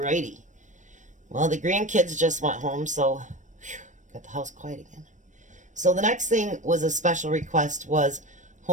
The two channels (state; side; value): late; left; 0.36 ms